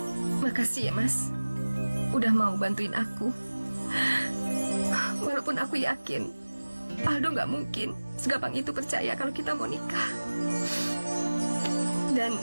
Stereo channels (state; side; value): inverted; both; correlation -1.00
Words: Makasih ya, Mas. Udah mau bantuin aku. Walaupun aku yakin Aldo nggak mungkin segampang itu percaya kalau kita mau nikah. Dan